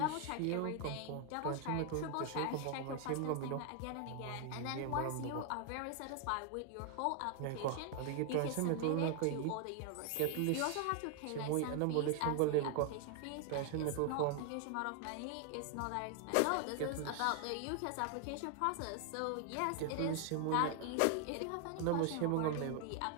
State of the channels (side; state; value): both; different; correlation 0.00